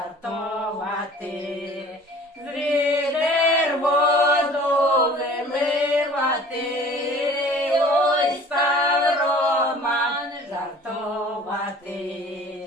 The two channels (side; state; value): both; normal; correlation 0.47